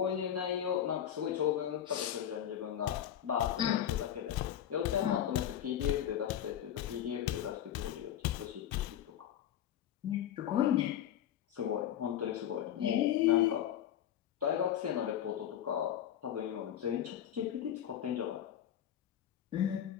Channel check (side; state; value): right; quieter; 10.6 dB